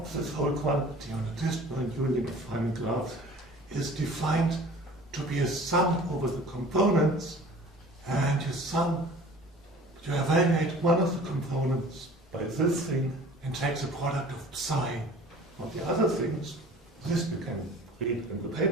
this whole quantity on a disjoint union of Feynman graphs is defined to be a sum over the components, and you evaluate one of the components by this thing and take the product of psi of the other things. This you can read in the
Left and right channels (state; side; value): normal; both; correlation 0.46